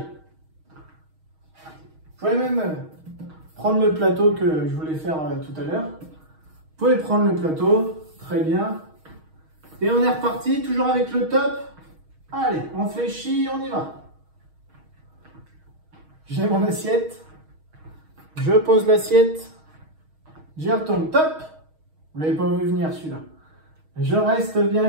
Vous pouvez même prendre le plateau que je voulais faire tout à l'heure. Vous pouvez prendre le plateau. Très bien. Et on est reparti, toujours avec le top. Allez, on fléchit, on y va. J'ai mon assiette. Je pose l'assiette. J'y retourne. Top. Vous ne l'avez pas vu venir celui-là. Je reste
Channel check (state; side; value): late; left; 6.4 ms